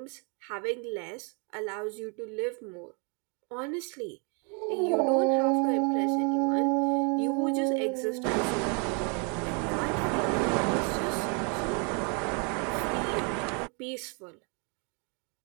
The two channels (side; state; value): left; quieter; 35.6 dB